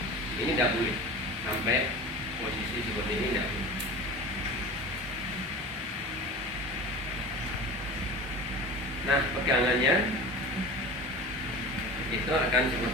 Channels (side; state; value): both; normal; correlation 0.34